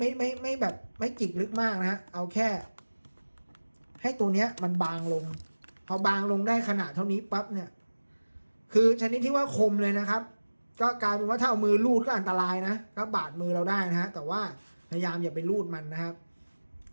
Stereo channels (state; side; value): inverted; both; correlation -1.00